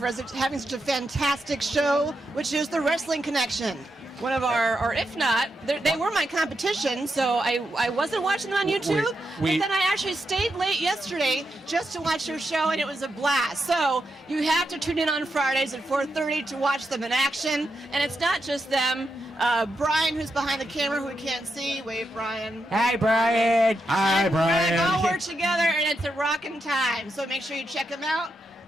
us having such a fantastic show, which is the Wrestling Connection. One of our, or if not, they were my competition, so I wasn't watching them on YouTube, but then I actually stayed late yesterday just to watch your show, and it was a blast. So you have to tune in on Fridays at 4:30 to watch them in action, and it's not just them. Brian, who's behind the camera, who we can't see. Wave, Brian. Hi, Brian. Hi, Brian. We all work together, and it's a rockin' time, so make sure you check them out.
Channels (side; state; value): both; normal; correlation 0.85